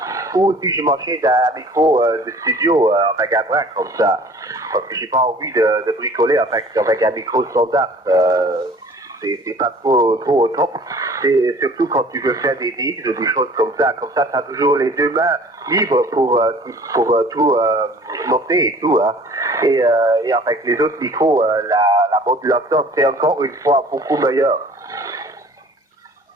Ou si je m'achète un micro de studio avec un bras comme ça. Parce que j'ai pas envie de bricoler avec un micro standard. C'est pas trop au top. C'est surtout quand tu veux faire des mix ou des choses comme ça. Comme ça, tu as toujours les deux mains libres pour tout noter et tout. Hein. Et avec les autres micros, la modulation, c'est encore une fois beaucoup meilleure.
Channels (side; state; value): both; normal; correlation 0.49